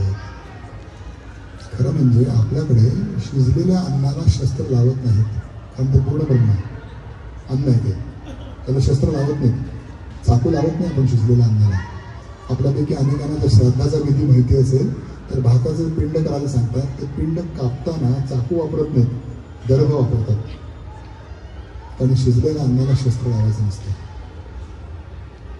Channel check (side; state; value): both; identical; correlation 1.00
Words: खरं म्हणजे आपल्याकडे शिजलेल्या अन्नाला शस्त्र लावत नाहीत, कारण ते पूर्ण ब्रह्म आहे. अन्न आहे ते, त्याला शस्त्र लावत नाहीत, चाकू लावत नाही आपण शिजलेल्या अन्नाला. आपल्यापैकी अनेकांना जर श्राद्धाचा विधी माहिती असेल तर भाताचं पिंड करायला सांगतात. ते पिंड कापताना चाकू वापरत नाहीत, दर्भ वापरतात, कारण शिजलेल्या अन्नाला शस्त्र लावायचं नसतं.